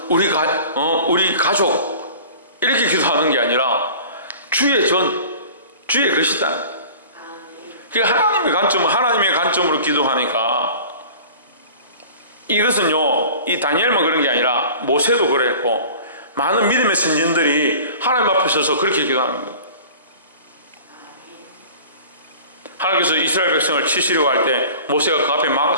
우리 가족 이렇게 기도하는 게 아니라 주의 전, 주의 것이다. 하나님의 관점으로 기도하니까, 이것은요, 이 다니엘만 그런 게 아니라 모세도 그랬고 많은 믿음의 선진들이 하나님 앞에 서서 그렇게 기도하는 거예요. 하나님께서 이스라엘 백성을 치시려고 할 때 모세가 그 앞에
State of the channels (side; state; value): both; inverted; correlation -0.42